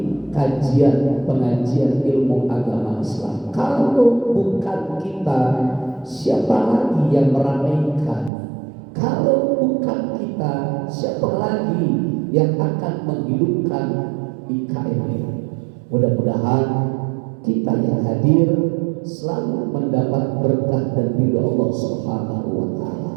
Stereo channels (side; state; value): left; drops out; at 8.3 s